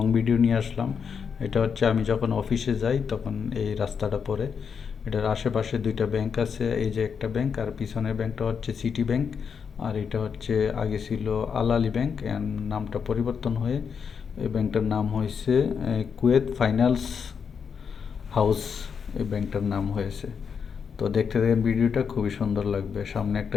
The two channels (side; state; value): right; quieter; 6.5 dB